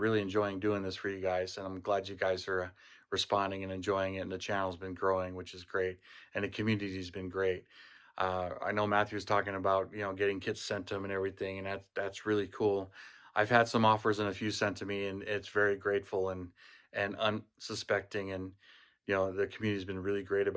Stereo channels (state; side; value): identical; both; correlation 1.00